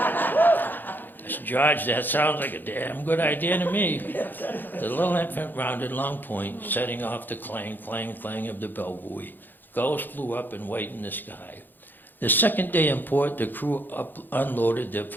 I said, "George, that sounds like a damn good idea to me." The little infant rounded Long Point, setting off the clang, clang, clang of the bell buoy. Gulls flew up and white in the sky. The second day in port, the crew unloaded their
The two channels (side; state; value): right; late; 0.090 ms